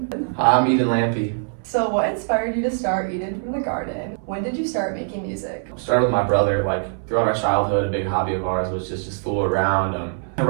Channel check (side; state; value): left; silent; 62 dB below the other